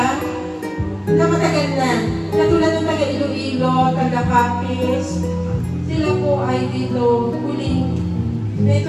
na matagal na. Katulad ng taga Iloilo, taga Capiz, sila po ay dito huling may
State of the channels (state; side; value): identical; both; correlation 1.00